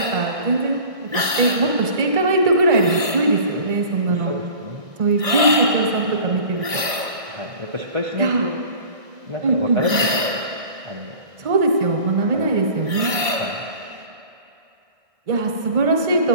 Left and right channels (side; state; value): left; late; 1.6 ms